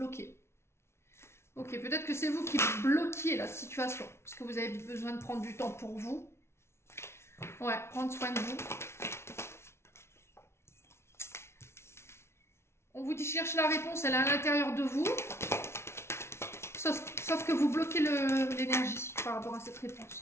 Ok, peut-être que c'est vous qui bloquiez la situation. Parce que vous avez besoin de prendre du temps pour vous. Ouais, prendre soin de vous. On vous dit cherche la réponse, elle est à l'intérieur de vous. Sauf que vous bloquez l'énergie par rapport à cette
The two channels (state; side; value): late; right; 0.13 ms